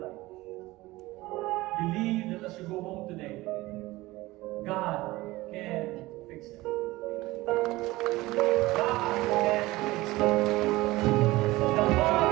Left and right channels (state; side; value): quieter; left; 19.3 dB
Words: believe that as you go home today, God can fix it. God can fix it.